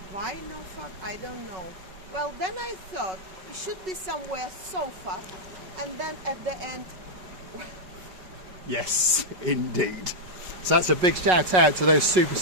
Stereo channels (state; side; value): late; left; 5.4 ms